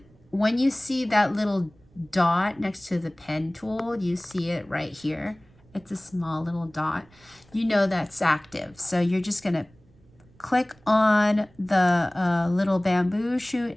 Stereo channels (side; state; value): right; noise; rumble, 29 dB below the sound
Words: when you see that little dot next to the pen tool, you see it right here. It's a small little dot. You know that's active. So you're just going to click on the little bamboo shoot,